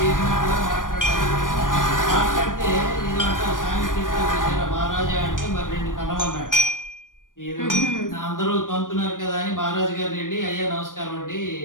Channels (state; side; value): late; right; 0.89 ms